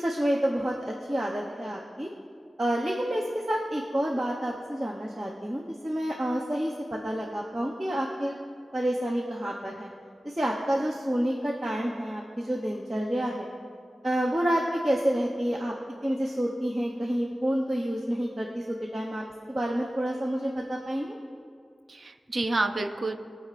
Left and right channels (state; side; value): normal; both; correlation 0.95